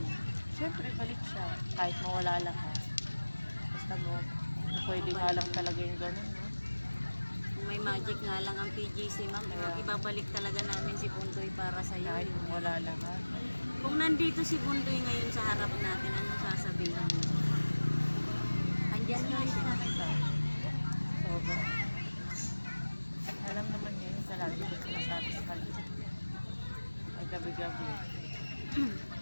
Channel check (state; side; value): inverted; both; correlation -1.00